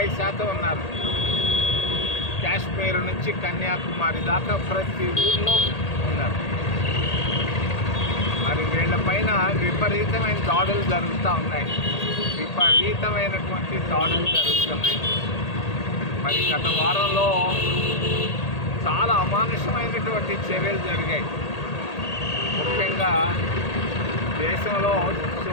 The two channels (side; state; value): right; late; 1.8 ms